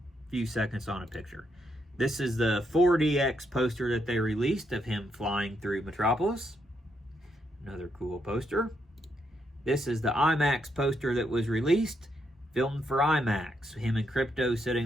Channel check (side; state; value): both; normal; correlation 0.78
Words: A few seconds on a picture. This is the 4DX poster that they released of him flying through Metropolis. Another cool poster. This is the IMAX poster that was released, filmed for IMAX. Him and Crypto sitting